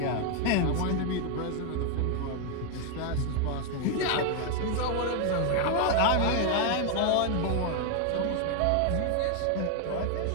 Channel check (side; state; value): both; different; correlation 0.00